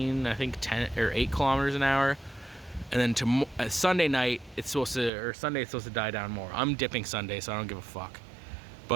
I think 10 or 8 km/h. And then Sunday night, Sunday it's supposed to die down more. I'm dipping Sunday, so I don't give a fuck.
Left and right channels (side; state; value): left; drops out; at 5.1 s